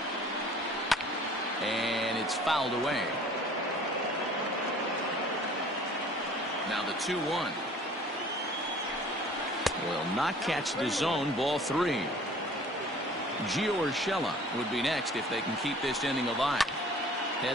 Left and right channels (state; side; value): normal; both; correlation 0.50